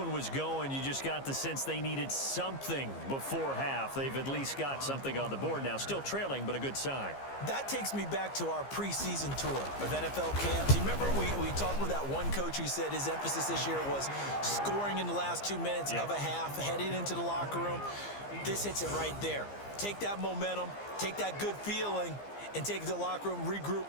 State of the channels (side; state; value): right; late; 15 ms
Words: was going, you just got the sense they needed something before half. They've at least got something on the board now. Still trailing, but a good sign. That takes me back to our preseason tour of NFL camps. You remember we talked with that one coach who said his emphasis this year was scoring in the last 2 minutes of a half, heading into the locker room. This hits it right there. Take that momentum, take that good feeling, and take it to the locker room,